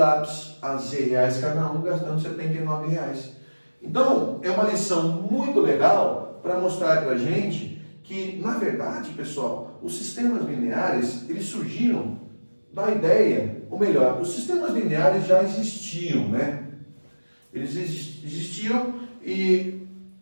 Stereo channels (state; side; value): inverted; both; correlation -1.00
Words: a Z reais cada um, gastando R$79. Então, é uma lição muito legal para mostrar para a gente que, na verdade, pessoal, os sistemas lineares, eles surgiram da ideia, ou melhor, os sistemas lineares já existiam, né? Eles existiam e